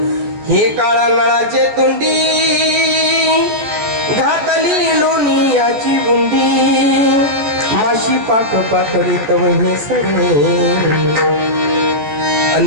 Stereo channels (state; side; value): late; left; 14 ms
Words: हे काळा नळाचे तोंडी घातली लोणियाची बुंदी माशी पाक पाकडी तव हे सरे